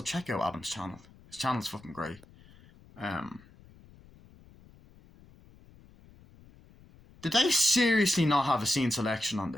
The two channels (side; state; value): left; noise; rumble, 25 dB below the sound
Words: check out Adam's channel. His channel's fucking great. Did they seriously not have a scene selection on